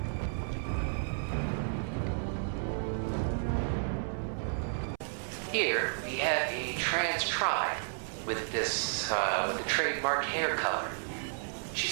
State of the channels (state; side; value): silent; left; 56 dB below the other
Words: Here we have a trans tribe with this with the trademark hair color. She's